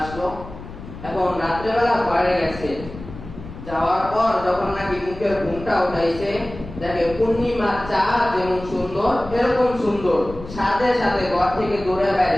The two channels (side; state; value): left; noise; rumble, 14 dB below the sound